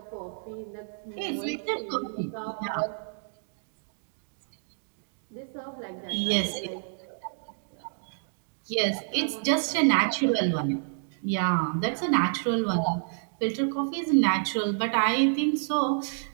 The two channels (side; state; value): left; silent; digital silence